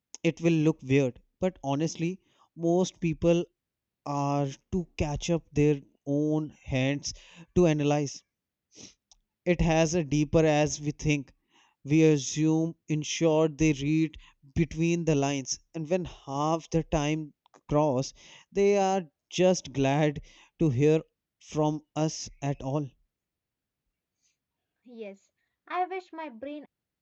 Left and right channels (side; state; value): both; identical; correlation 1.00